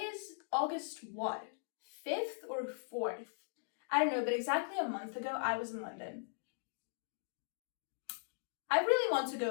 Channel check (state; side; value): silent; right; digital silence